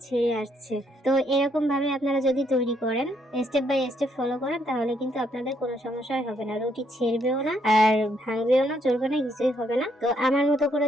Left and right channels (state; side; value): normal; both; correlation 0.72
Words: ছেড়ে আসছে। তো এরকম ভাবে আপনারা যদি তৈরি করেন, স্টেপ বাই স্টেপ ফলো করেন, তাহলে কিন্তু আপনাদের কোনো সমস্যাই হবে না। রুটি ছেড়বেও না আর ভাঙবেও না, চলবে না, কিছুই হবে না। তো আমার মতো করে